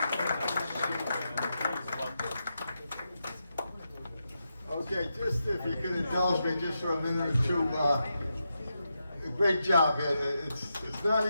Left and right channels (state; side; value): inverted; both; correlation -0.86